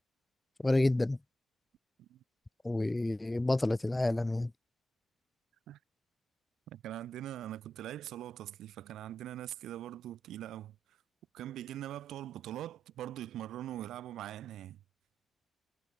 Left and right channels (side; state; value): both; normal; correlation 0.91